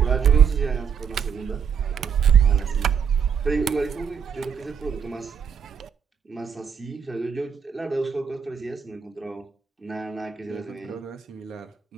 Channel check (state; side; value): quieter; left; 6.9 dB